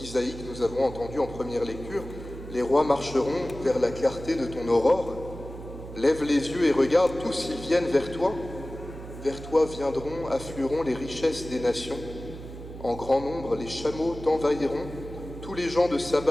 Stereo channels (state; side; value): noise; right; hum, 12 dB below the sound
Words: que nous avons entendue en première lecture. Les rois marcheront vers la clarté de ton aurore. Lève les yeux et regarde, tous ils viennent vers toi. Vers toi viendront, afflueront les richesses des nations. En grand nombre, les chameaux t'envahiront. Tous les gens de